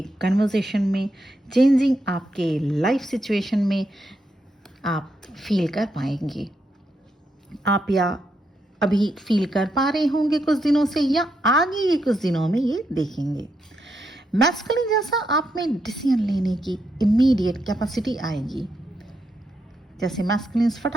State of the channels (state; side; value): normal; both; correlation 0.81